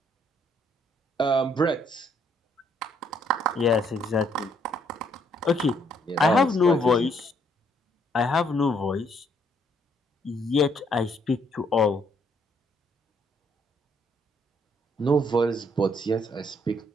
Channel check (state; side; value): normal; both; correlation 0.69